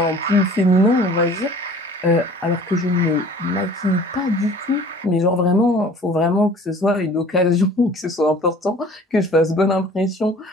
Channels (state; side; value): normal; both; correlation 0.48